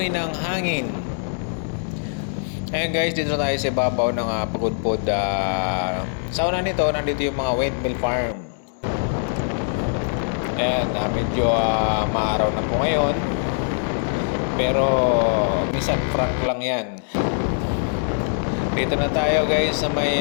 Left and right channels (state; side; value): silent; right; digital silence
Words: ng hangin. Ayan guys, dito na tayo sa ibabaw ng Pagudpod. Sa una nito, nandito yung mga windmill farm. Ayan, medyo maaraw na po ngayon. Pero minsan frank lang yan. Dito na tayo guys sa may